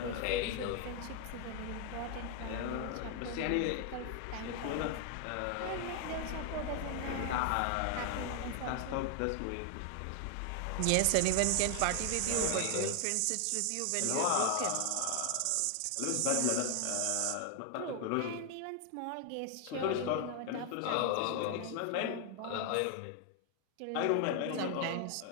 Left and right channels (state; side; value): different; both; correlation 0.00